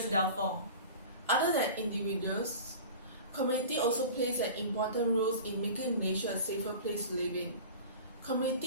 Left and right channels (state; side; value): inverted; both; correlation -0.37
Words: downfall. Other than individuals, community also plays an important role in making Malaysia a safer place to live in.